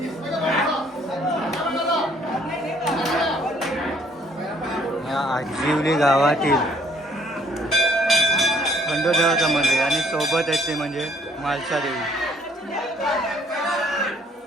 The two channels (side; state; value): both; normal; correlation 0.62